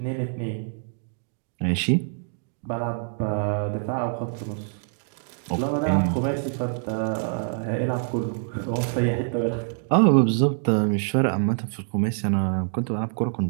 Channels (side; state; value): left; silent; digital silence